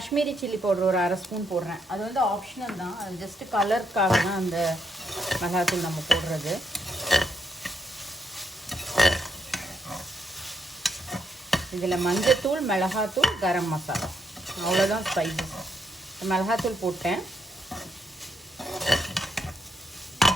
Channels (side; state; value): both; normal; correlation 0.77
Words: சில்லி பவுடர் ஒரு 1/2 ஸ்பூன் போடுறேன். அது வந்து ஆப்ஷனல் தான், அது ஜஸ்ட்டு கலருக்காக தான் அந்த மிளகாத்தூள் நம்ம போடுறது. இதில் மஞ்சத்தூள், மிளகாத்தூள், கரம் மசாலா, அவ்வளோதான் ஸ்பைசஸ். மிளகாத்தூள் போட்டேன்.